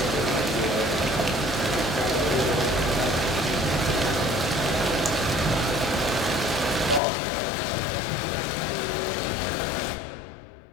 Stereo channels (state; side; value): drops out; right; at 7.0 s